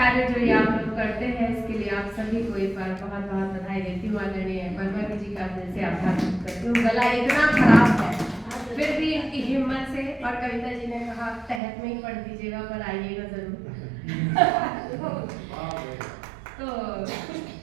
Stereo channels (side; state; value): left; drops out; at 11.6 s